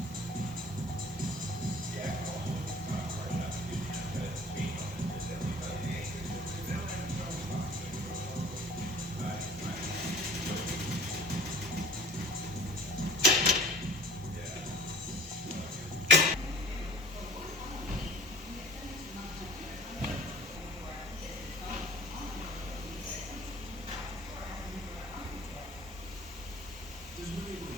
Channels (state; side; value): normal; both; correlation 0.46